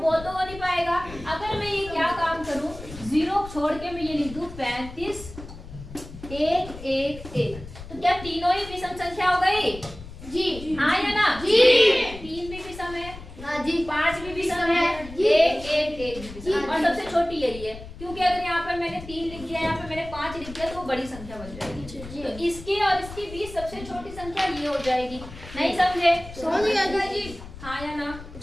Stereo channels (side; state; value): left; noise; rumble, 14 dB below the sound